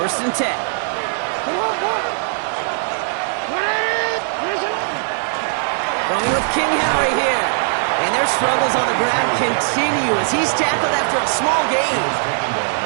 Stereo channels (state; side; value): silent; left; digital silence